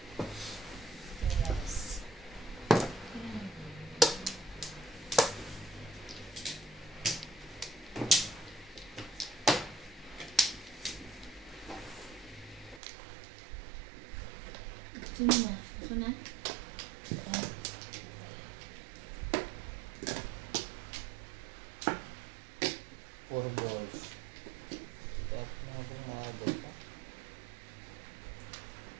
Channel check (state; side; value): drops out; left; at 12.8 s